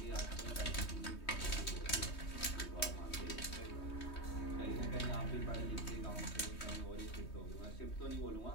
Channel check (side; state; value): right; late; 3.2 ms